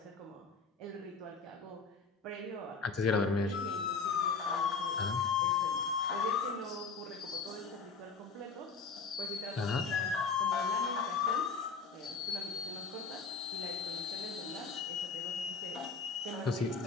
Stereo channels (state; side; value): quieter; right; 4.9 dB